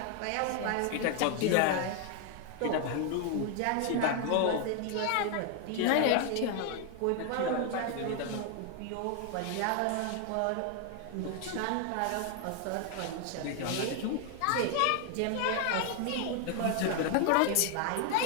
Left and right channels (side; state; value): both; different; correlation 0.00